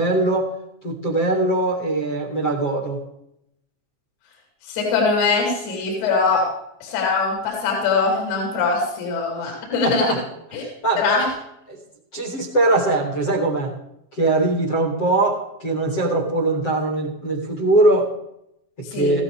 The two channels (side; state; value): right; late; 7.5 ms